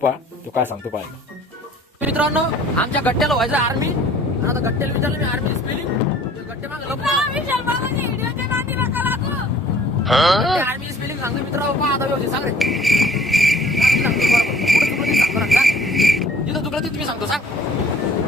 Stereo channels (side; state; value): both; normal; correlation 0.52